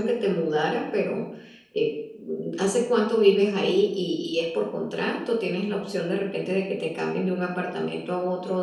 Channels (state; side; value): identical; both; correlation 1.00